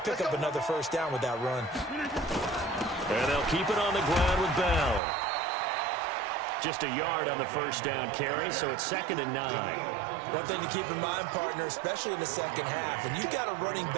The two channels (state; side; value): drops out; left; at 5.0 s